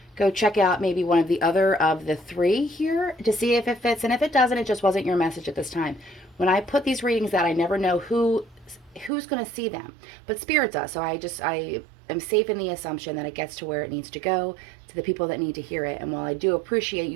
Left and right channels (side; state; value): left; drops out; at 9.1 s